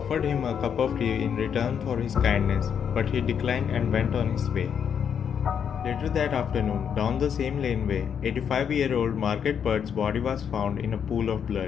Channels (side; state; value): right; quieter; 7.8 dB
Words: him a cup of tea in return for his kindness, but he declined and went on his way. Later that afternoon, down the same laneway, 85-year-old Margaret Bird's body was found in a pool of